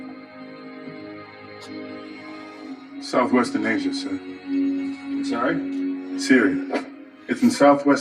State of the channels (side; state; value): both; identical; correlation 1.00